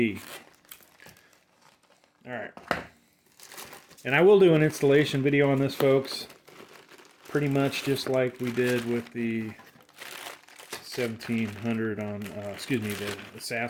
All right. And I will do an installation video on this, folks. Pretty much just like we did with the 1700 on, excuse me, the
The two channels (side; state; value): both; identical; correlation 1.00